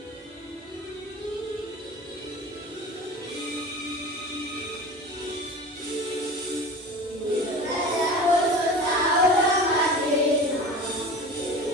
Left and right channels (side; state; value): both; normal; correlation 0.35